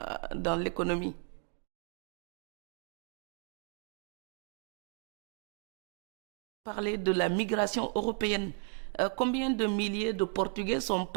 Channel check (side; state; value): left; quieter; 37.9 dB